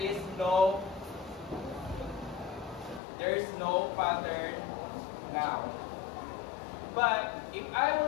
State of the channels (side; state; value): right; drops out; at 3.0 s